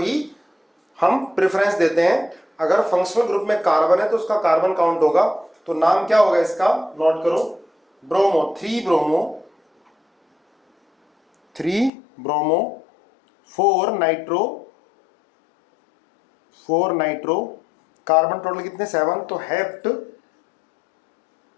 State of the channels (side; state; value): right; drops out; at 11.9 s